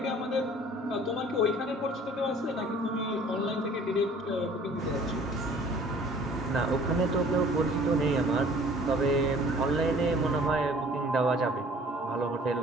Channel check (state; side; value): normal; both; correlation 0.51